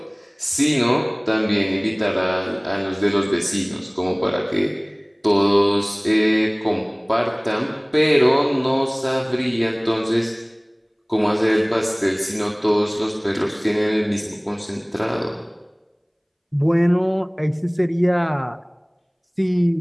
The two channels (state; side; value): identical; both; correlation 1.00